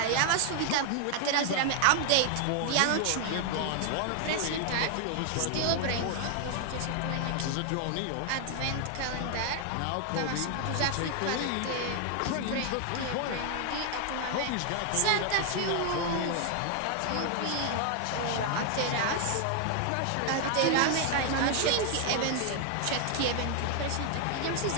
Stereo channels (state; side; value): different; both; correlation 0.00